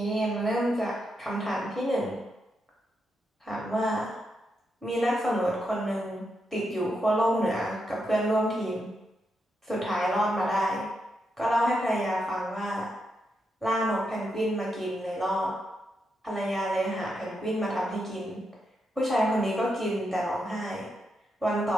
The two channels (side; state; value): both; normal; correlation 0.83